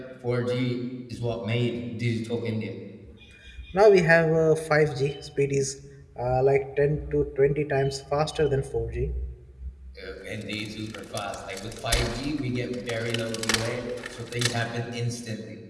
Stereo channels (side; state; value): both; identical; correlation 1.00